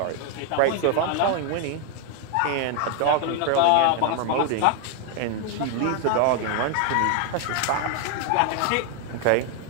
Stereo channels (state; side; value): different; both; correlation 0.00